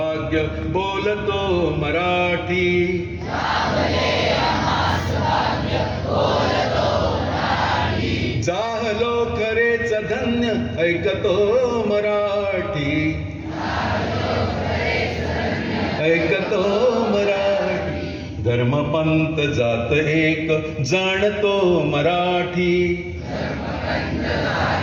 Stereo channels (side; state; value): both; identical; correlation 1.00